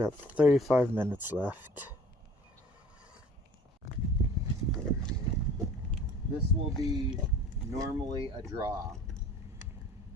35 minutes left. This will be normally a draw,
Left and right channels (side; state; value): both; normal; correlation 0.48